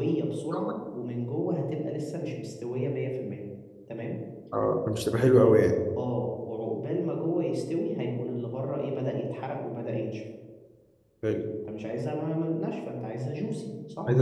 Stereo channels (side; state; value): both; identical; correlation 1.00